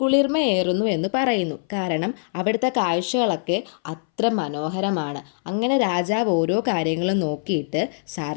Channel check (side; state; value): right; silent; 61 dB below the other